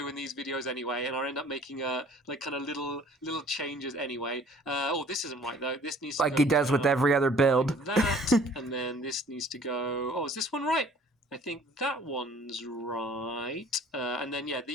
in these videos anyway, and I end up making like kind of little changes anyway. Oh, this isn't right though. This needs to Like go he does with every other build. like that, and then this needs to go. Oh, is this one right? I think that one's right. And then yeah,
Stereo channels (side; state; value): both; normal; correlation 0.53